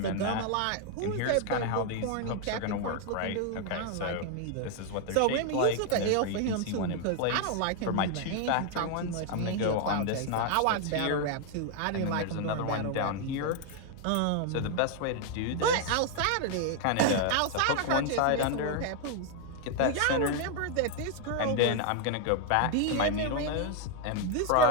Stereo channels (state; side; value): different; both; correlation 0.01